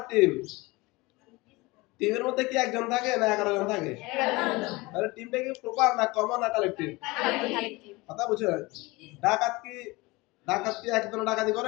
টিম, টিমের মধ্যে কি একজন থাকে না 11 জন থাকে? তাহলে টিমটা কি প্রপার না কমন না কালেকটিভ? কথা বুঝছো? ডাকাত কি ডাকাত কি একজন ডাকাতি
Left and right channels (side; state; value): right; quieter; 23.1 dB